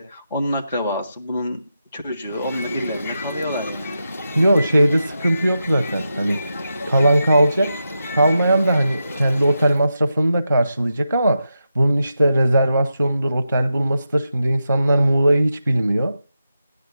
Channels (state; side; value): inverted; both; correlation -0.88